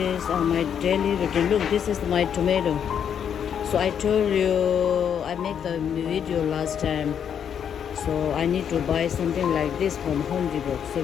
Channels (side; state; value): right; quieter; 8.3 dB